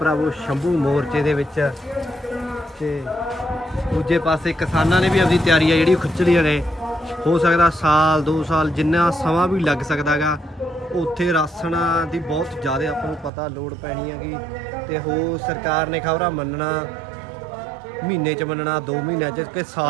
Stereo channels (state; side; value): drops out; left; at 13.3 s